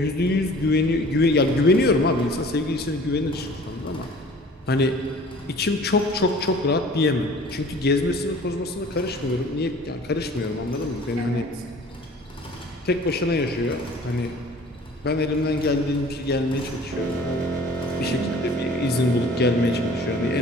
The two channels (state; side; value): normal; both; correlation 0.48